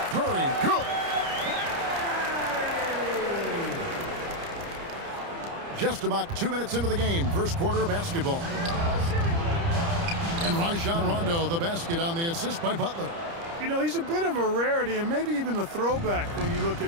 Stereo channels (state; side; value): late; left; 30 ms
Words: Curry, good. Just about 2 minutes into the game, first quarter of basketball. And Rajon Rondo, the basket on the assist by Butler. You know, he's a bit of a rarity and maybe even a throwback when you look